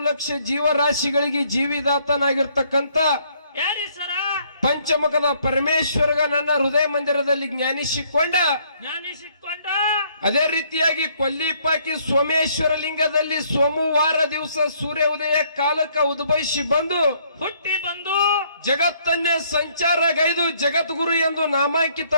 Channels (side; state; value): both; inverted; correlation -0.66